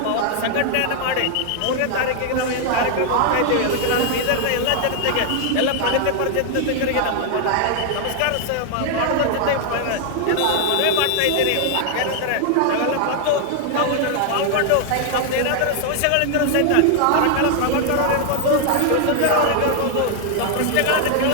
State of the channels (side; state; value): both; different; correlation 0.00